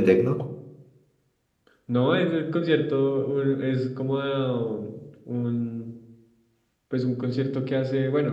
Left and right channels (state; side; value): identical; both; correlation 1.00